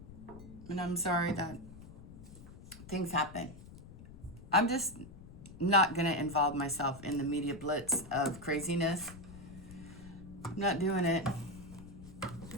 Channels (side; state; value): left; noise; rumble, 16 dB below the sound